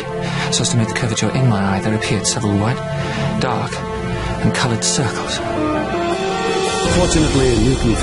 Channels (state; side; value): identical; both; correlation 1.00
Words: so as to make the curvature in my eye, there appeared several white, dark, and coloured circles. Fortunately, Newton